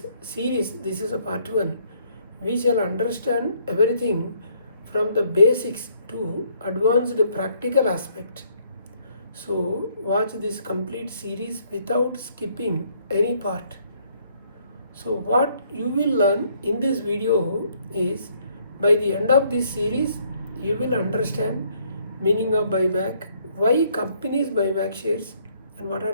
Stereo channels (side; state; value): both; inverted; correlation -0.66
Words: series, this is a part 1, we shall understand everything from the basics to advanced practical aspect. So watch this complete series without skipping any part. So what you will learn in this video is, by the end of this series, you will understand meaning of buyback, why companies buy back shares, and what